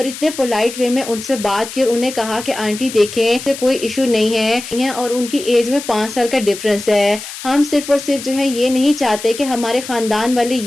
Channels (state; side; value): noise; left; hiss, 11 dB below the sound